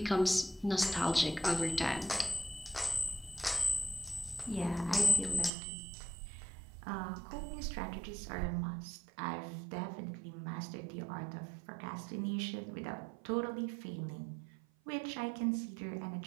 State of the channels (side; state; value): left; drops out; at 5.5 s